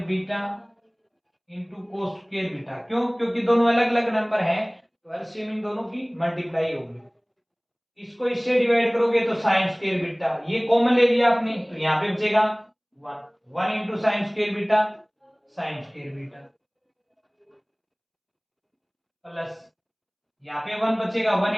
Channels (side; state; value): both; identical; correlation 1.00